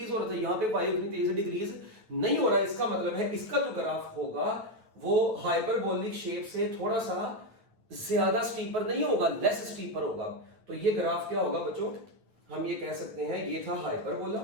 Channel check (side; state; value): left; late; 9.0 ms